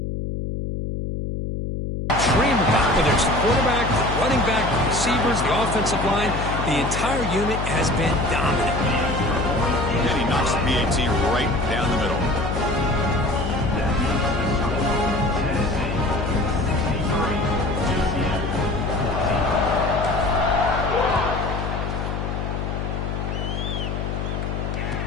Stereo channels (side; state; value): left; noise; hum, 3 dB below the sound